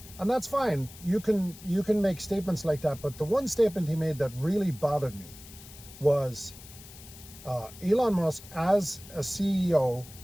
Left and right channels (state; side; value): noise; left; hiss, 18 dB below the sound